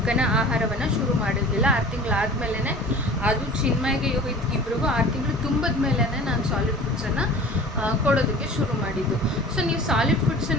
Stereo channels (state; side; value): normal; both; correlation 0.42